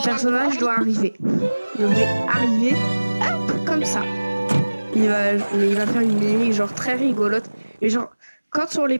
personnage doit arriver. Devrait arriver, hop, comme ça. Mais il va faire une mimique genre très rigolote. Et genre, quand on les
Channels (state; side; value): inverted; both; correlation -1.00